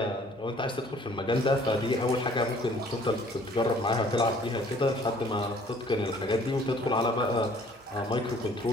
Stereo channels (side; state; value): both; normal; correlation 0.56